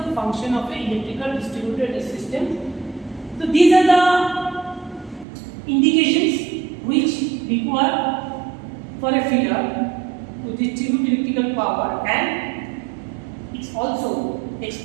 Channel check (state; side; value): drops out; left; at 5.2 s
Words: function of an electrical distributed system. So these are the indications which require for a feeder to distribute electrical power, and it's also